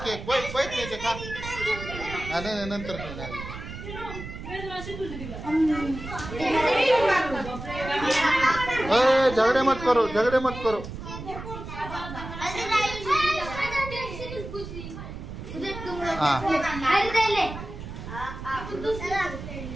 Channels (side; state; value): right; noise; rumble, 10 dB below the sound